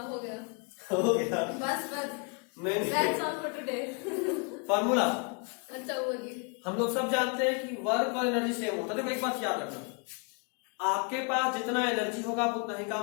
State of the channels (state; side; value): quieter; right; 35.6 dB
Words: हो गया बस नहीं that's all for today. Formula अच्छा होगी, हम लोग सब जानते हैं कि वर्क और एनर्जी सेम होता है। देखो एक बात याद रखना, आपके पास जितना एनर्जी होगा आप उतना ही